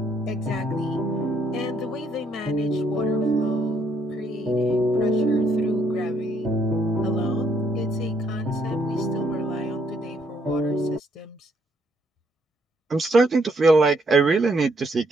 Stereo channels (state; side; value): normal; both; correlation 0.70